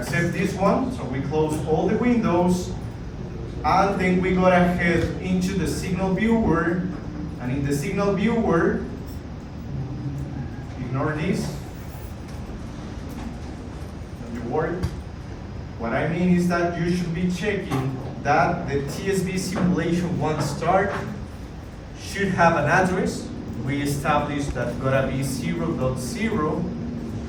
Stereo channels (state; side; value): identical; both; correlation 1.00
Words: this one. So we close all the windows, and then we go ahead into the signal viewer, and in the signal viewer, ignore this, don't you worry. What I mean is that you should be checking that the TSV simulation one start should have an address. We established that gotta be 0.0